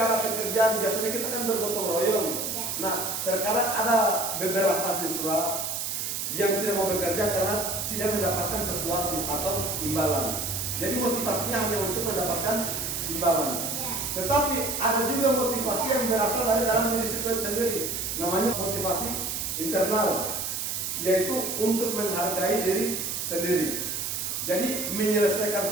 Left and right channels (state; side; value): noise; right; hiss, 2 dB below the sound